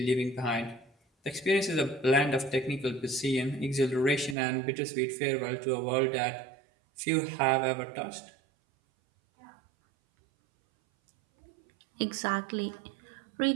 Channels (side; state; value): left; drops out; at 4.4 s